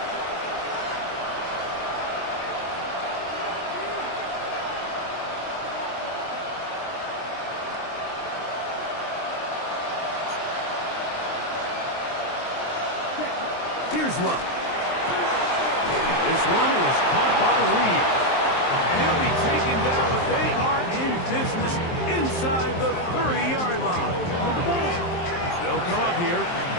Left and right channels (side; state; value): right; late; 23 ms